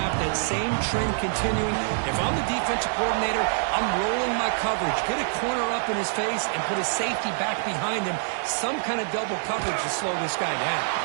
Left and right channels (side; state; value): left; silent; digital silence